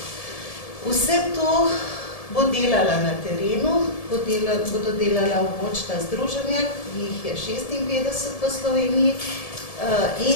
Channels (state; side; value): late; right; 1.7 ms